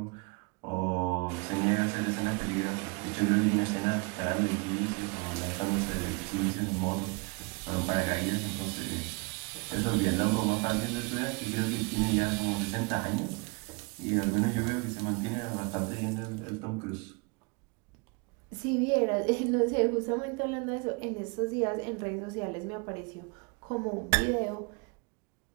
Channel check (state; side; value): quieter; left; 30.6 dB